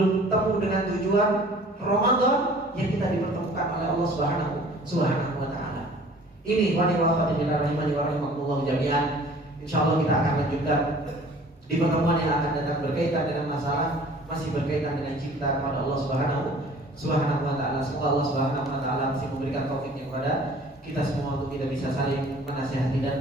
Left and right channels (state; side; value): normal; both; correlation 0.50